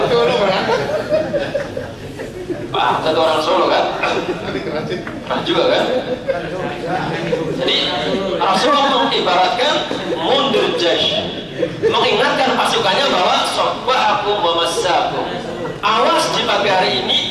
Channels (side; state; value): both; identical; correlation 1.00